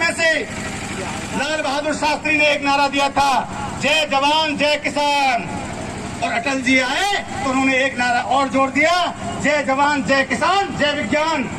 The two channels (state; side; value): identical; both; correlation 1.00